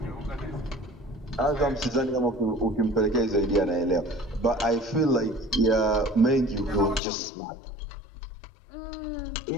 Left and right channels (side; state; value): right; drops out; at 7.0 s